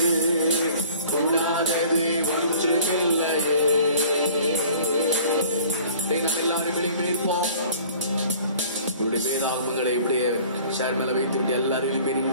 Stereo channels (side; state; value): both; inverted; correlation -0.49